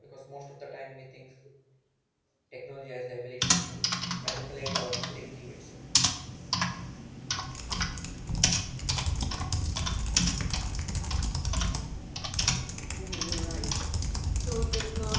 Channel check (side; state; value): both; identical; correlation 1.00